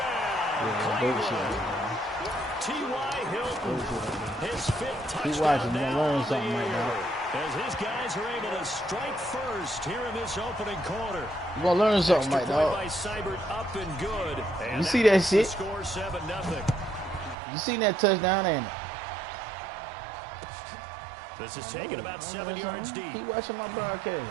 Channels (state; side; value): drops out; left; at 17.4 s